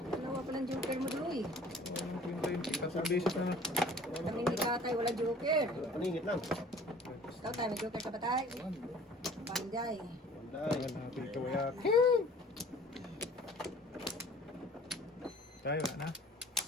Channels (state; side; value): normal; both; correlation 0.49